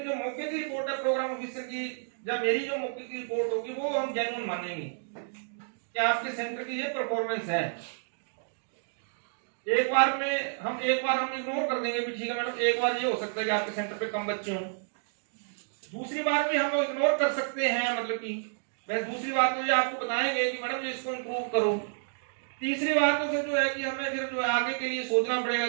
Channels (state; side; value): silent; left; digital silence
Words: जो मौके की रिपोर्ट है प्रोग्राम ऑफिसर की, जब मेरी जो मौके की रिपोर्ट होगी वो हम जेन्युइन मानेंगे कि आपके सेंटर की ये परफॉर्मेंस है। एक बार हम इग्नोर कर देंगे भी ठीक है मैडम, एक बार ये हो सकता है कि आपके सेंटर पे कम बच्चे हों, दूसरी बार भी हम इग्नोर कर सकते हैं, मतलब कि बस दूसरी बात तो ये आपको बताएंगे कि मैडम इसको इम्प्रूव करो। तीसरी बात तो फिर जो है कि हमें फिर जो है आगे के लिए सोचना पड़ेगा